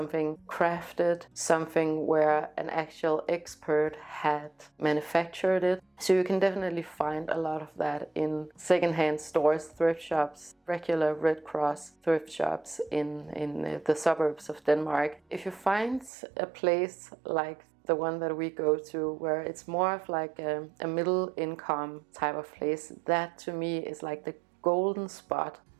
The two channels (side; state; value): left; drops out; at 16.1 s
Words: crafted, something where an actual expert had manufactured it. So you can definitely find a lot of that in secondhand stores, thrift shops, regular Red Cross thrift shops in the suburbs of Denmark. If you find a place like the one that we go to, where it's more of like a middle income type of place, that to me is like the golden spot,